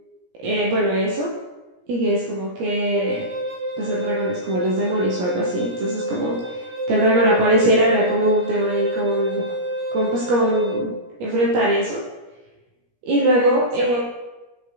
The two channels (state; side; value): late; left; 17 ms